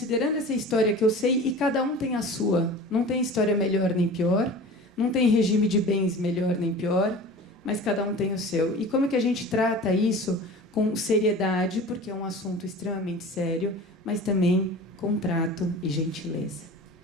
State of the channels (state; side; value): normal; both; correlation 0.38